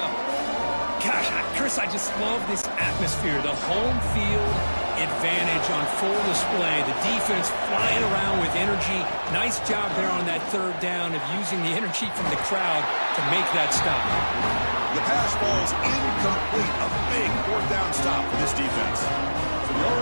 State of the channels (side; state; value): both; inverted; correlation -1.00